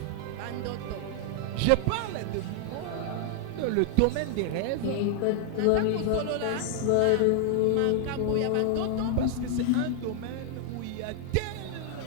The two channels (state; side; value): different; both; correlation 0.00